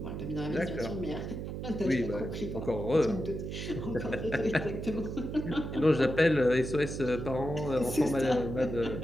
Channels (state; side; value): noise; right; hum, 6 dB below the sound